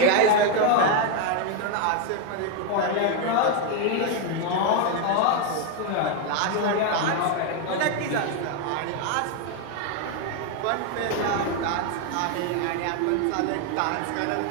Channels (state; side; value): different; both; correlation 0.01